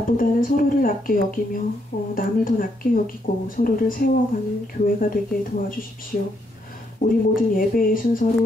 서로를 낮게 여기며 남을 더 낮게 여기고 서로를 세워가는 교회가 되게 도와주십시오. 우리 모든 예배의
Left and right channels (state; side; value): normal; both; correlation 0.75